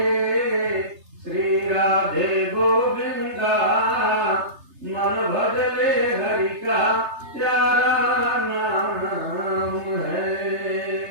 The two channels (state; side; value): late; left; 3.3 ms